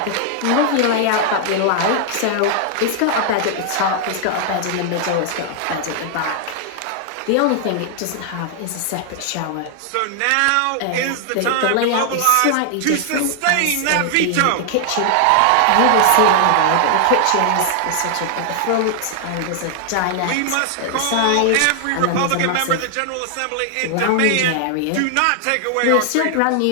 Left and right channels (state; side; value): different; both; correlation 0.00